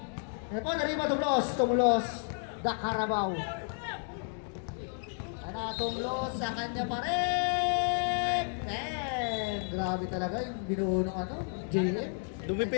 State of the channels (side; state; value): right; silent; 57 dB below the other